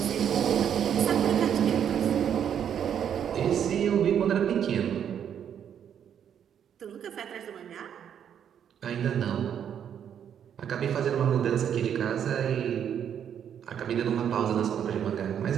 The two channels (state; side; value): quieter; left; 8.8 dB